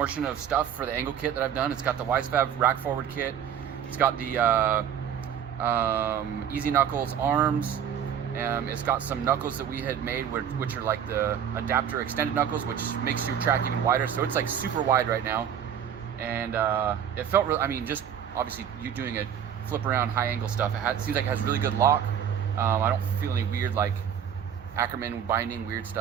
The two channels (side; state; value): left; quieter; 8.8 dB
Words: of stuff for the angle kit that I've done. It's got the Wisefab rack forward kit. It's got the Easy Knuckles arms. It's got some knuckles that we had made, which are like the adapter extended knuckles, which makes your track even wider. So it's like super wide right now. And it felt real. I mean, just obviously you doing a flip around high angle stuff, it seems like it has really good lock. I don't feel any weird like Ackerman binding weird